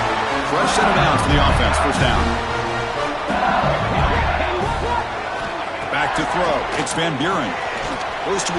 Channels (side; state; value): both; identical; correlation 1.00